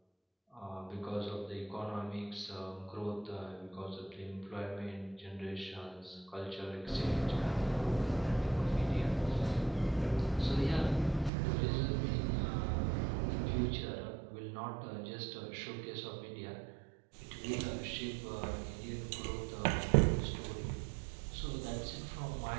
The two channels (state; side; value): drops out; left; at 11.3 s